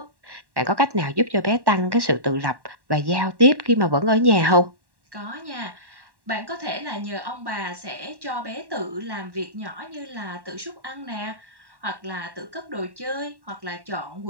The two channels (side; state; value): left; late; 1.1 ms